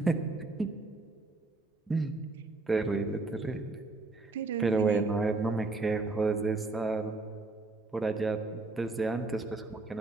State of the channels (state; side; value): quieter; left; 3.3 dB